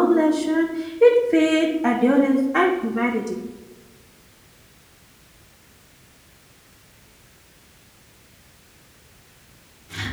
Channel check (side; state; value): both; identical; correlation 1.00